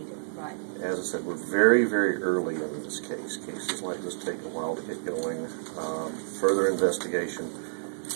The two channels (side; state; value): left; silent; 59 dB below the other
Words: to provide? As I said, we're very, very early in this case. Cases like this take a while to get going. Further investigation,